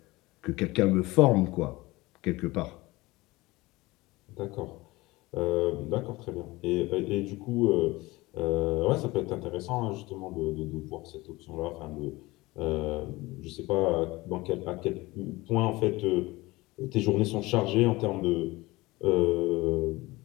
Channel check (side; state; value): right; quieter; 20.8 dB